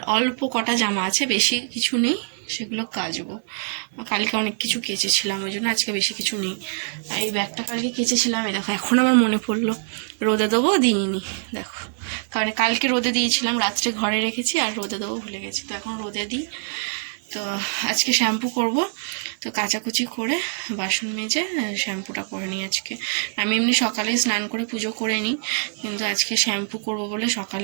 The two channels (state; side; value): silent; left; 57 dB below the other